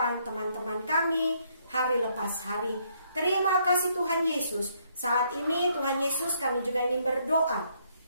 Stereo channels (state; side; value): inverted; both; correlation -0.70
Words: teman-teman kami hari lepas hari. Terima kasih Tuhan Yesus. Saat ini Tuhan Yesus, kami juga ingin berdoa